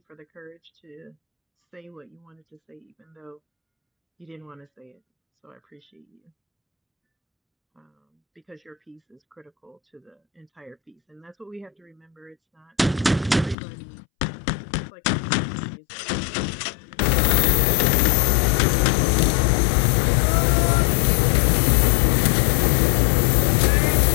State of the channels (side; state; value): right; drops out; at 13.6 s